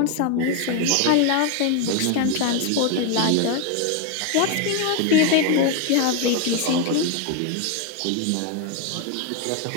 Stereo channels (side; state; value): both; different; correlation 0.01